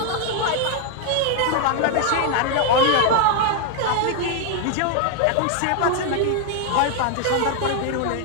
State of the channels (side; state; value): both; different; correlation 0.01